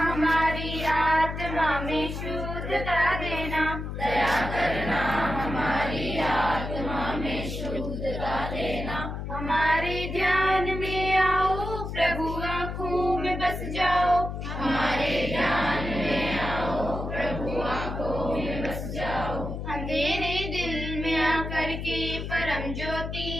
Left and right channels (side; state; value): left; noise; hum, 6 dB below the sound